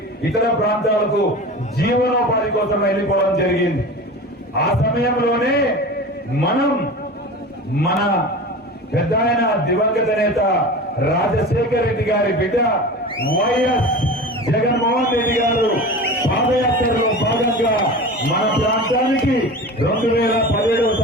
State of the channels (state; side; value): normal; both; correlation 0.33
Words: ఇతర ప్రాంతాలకు జీవనోపాధి కోసం వెళ్ళిపోవడం జరిగింది. ఆ సమయంలోనే మనం మన పెద్ద ఆయన దివంగత నేత రాజశేఖర రెడ్డి గారి బిడ్డ వైఎస్ జగన్మోహన్ రెడ్డి గారు పాదయాత్రలో భాగంగా మన ప్రాంతానికి 2017